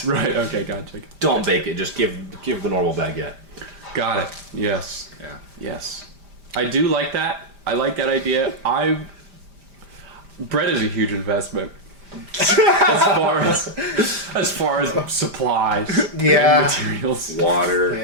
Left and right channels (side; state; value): left; late; 5.0 ms